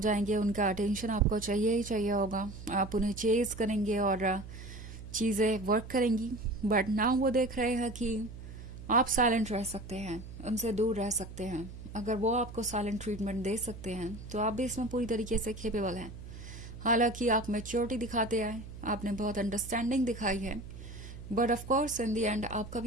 उनका अटेंशन आपको चाहिए ही चाहिए होगा, आप उन्हें चेज करेंगे और चीज़ें वर्क करेंगी। बट नाउ वो देख रहे हैं कि आप साइलेंट रह सकते हैं, उनसे दूर रह सकते हैं। अगर वो आपको साइलेंट ट्रीटमेंट दे सकते हैं तो आप भी इसमें पूरी तरीके से केपेबल हैं। हालांकि आप मैच्योरिटी दिखाते आए, आपने बहुत अंडरस्टैंडिंग दिखाई है, but of course in the and आपका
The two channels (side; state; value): right; noise; hum, 13 dB below the sound